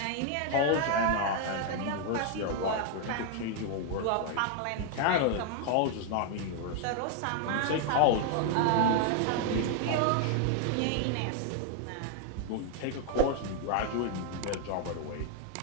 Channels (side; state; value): both; different; correlation 0.00